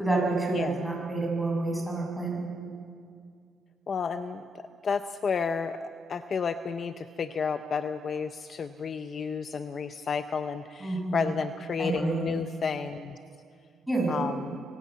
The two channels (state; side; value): normal; both; correlation 0.79